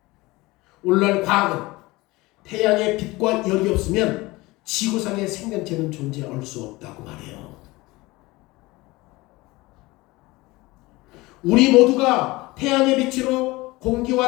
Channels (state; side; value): quieter; right; 21.3 dB